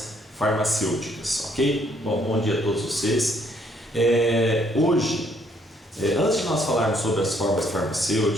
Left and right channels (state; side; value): normal; both; correlation 0.67